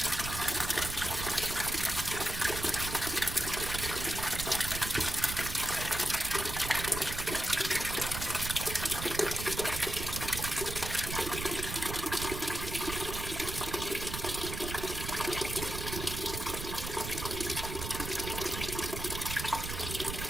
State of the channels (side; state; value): right; noise; rumble, 6 dB below the sound